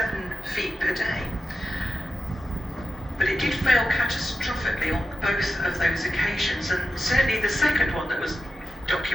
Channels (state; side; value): normal; both; correlation 0.91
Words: feet per day. But it did fail catastrophically on both of those occasions, and certainly the second one that was